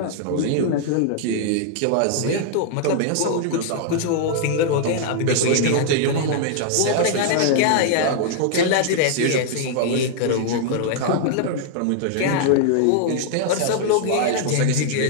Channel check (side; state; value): both; different; correlation -0.01